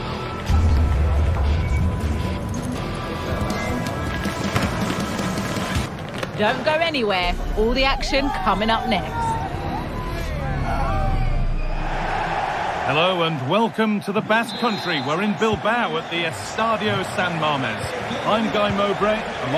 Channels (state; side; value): identical; both; correlation 1.00